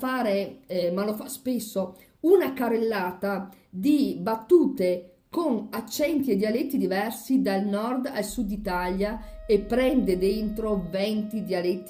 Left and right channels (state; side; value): identical; both; correlation 1.00